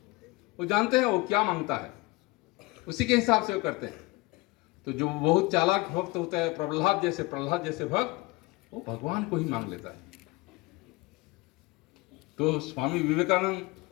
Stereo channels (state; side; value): quieter; right; 22.4 dB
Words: वो जानते हैं वो क्या मांगता है, उसी के हिसाब से वो करते हैं। तो जो बहुत चालाक भक्त होता है, प्रहलाद जैसे भक्त, वो भगवान को ही मांग लेता है। तो स्वामी विवेकानंद